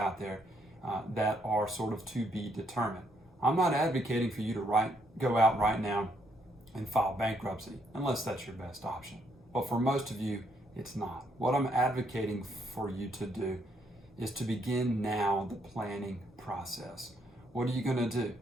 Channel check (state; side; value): normal; both; correlation 0.73